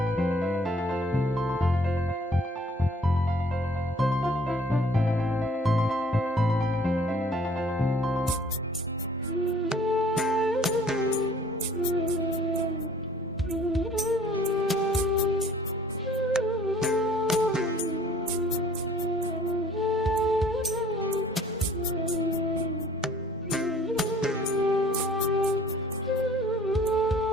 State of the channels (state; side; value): normal; both; correlation 0.55